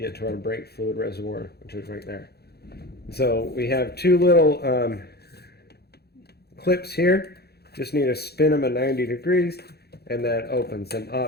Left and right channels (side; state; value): right; late; 0.47 ms